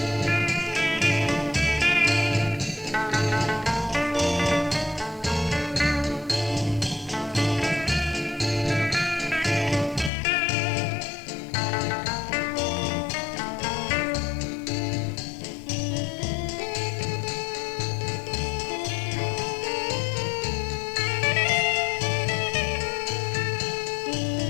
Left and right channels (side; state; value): right; drops out; at 10.1 s